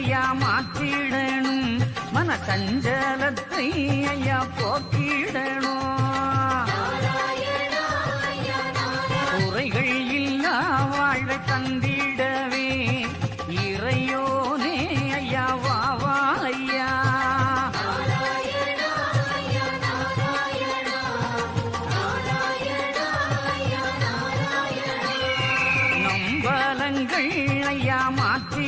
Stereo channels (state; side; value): identical; both; correlation 1.00